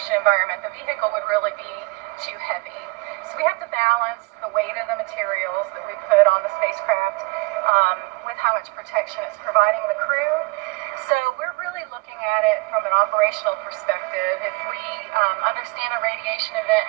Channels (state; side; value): quieter; left; 25.8 dB